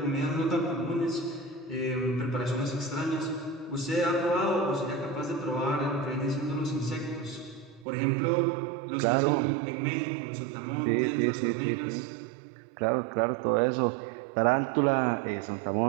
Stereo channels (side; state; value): left; drops out; at 7.9 s